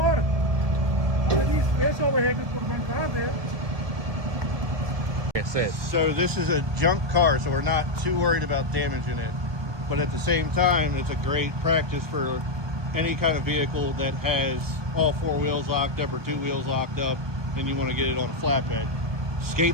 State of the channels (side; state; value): left; late; 1.2 ms